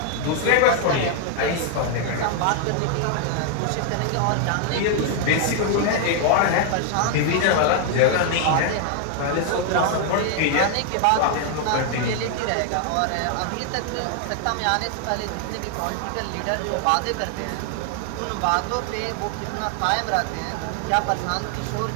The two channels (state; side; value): different; both; correlation 0.00